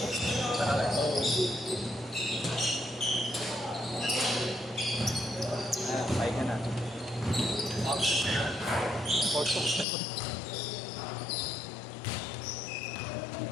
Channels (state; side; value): drops out; right; at 9.9 s